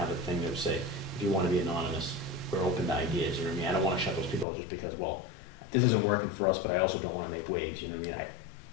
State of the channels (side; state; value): right; drops out; at 4.5 s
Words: a thing that would say, if you want to be anonymous, we're open to ideas, I don't want to shut those people out just because, well, this isn't working for us, but I also don't want to make waves,